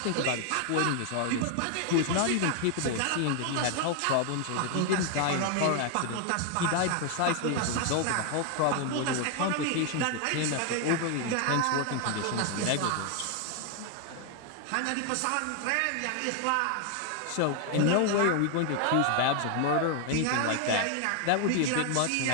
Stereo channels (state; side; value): different; both; correlation 0.00